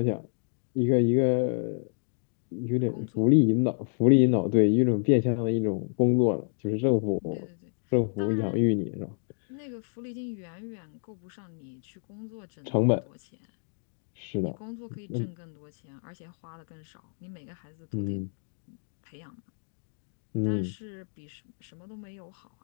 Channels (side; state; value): right; silent; digital silence